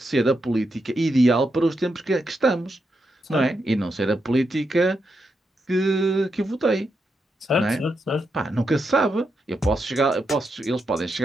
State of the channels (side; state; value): both; normal; correlation 0.84